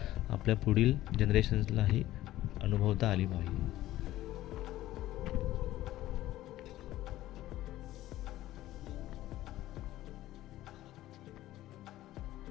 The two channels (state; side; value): quieter; right; 15.0 dB